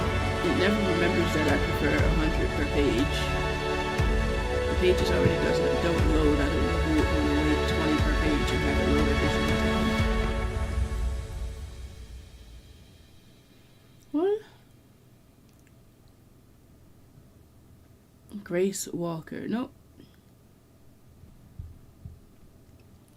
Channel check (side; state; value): both; identical; correlation 1.00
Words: It never remembers that I prefer 100 per page. The pages already don't load. I don't know who would want to wait 20 per page and have it load every single time. What? Grace Walker. Nope.